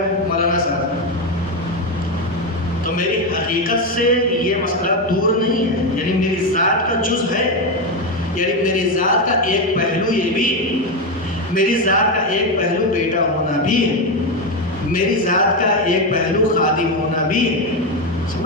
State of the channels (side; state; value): both; normal; correlation 0.10